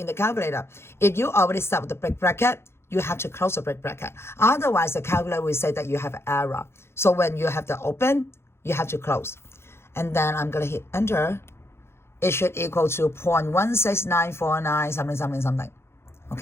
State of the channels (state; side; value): late; right; 0.12 ms